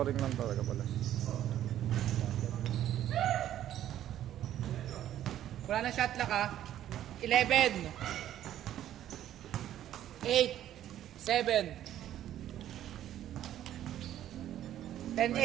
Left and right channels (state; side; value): quieter; left; 11.9 dB